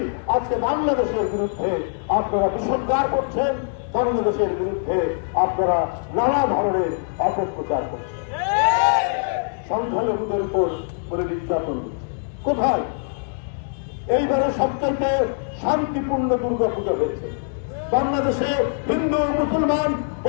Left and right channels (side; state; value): right; silent; digital silence